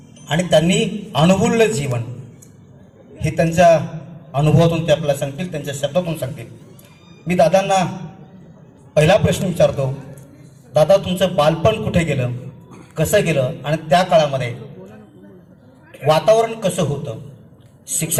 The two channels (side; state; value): both; identical; correlation 1.00